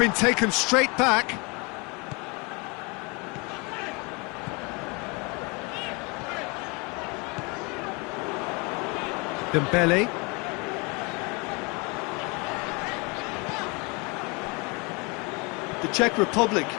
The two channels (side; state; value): right; quieter; 29.5 dB